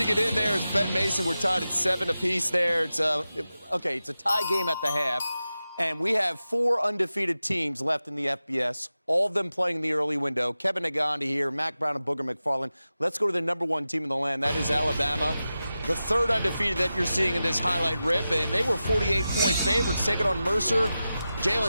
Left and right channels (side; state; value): both; inverted; correlation -0.93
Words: it in there is Ben Mason. We're tied at 7 apiece there. It's it's a tie game at the half, and we have 4 undefeated teams left in the FBS. All of them playing in the early window. Kevin Nagandi here, Mac Brown and Booger McFarland. Let's go to the number 1 team in the land. That is Alabama. The 3rd undefeated that you're seeing in this highlight rip, and they were 48-point favorites taking on Mercer.